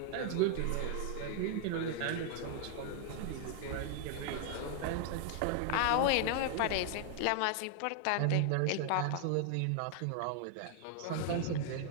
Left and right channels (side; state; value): both; different; correlation 0.00